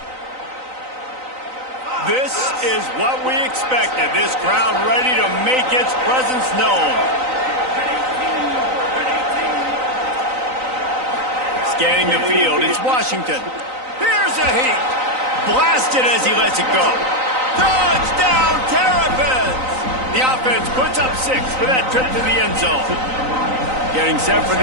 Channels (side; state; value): left; late; 3.9 ms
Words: This is what we expected. This crowd ready to make its presence known. Scanning the field, it's Washington. Here's a heat. Blasted as he lets it go. Touchdown, Terrapins! The offense puts up 6 for that trip to the end zone. Getting set for